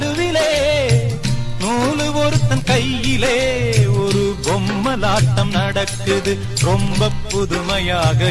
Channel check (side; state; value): both; identical; correlation 1.00